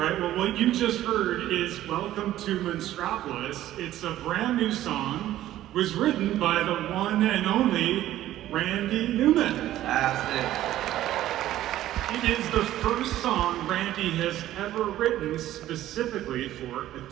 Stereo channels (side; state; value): left; quieter; 13.7 dB